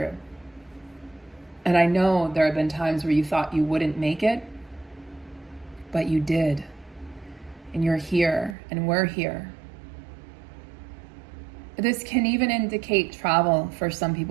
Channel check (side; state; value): left; drops out; at 8.6 s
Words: And I know there have been times where you thought you wouldn't make it, but you did. And you're here, and we're here. This can even indicate travel for some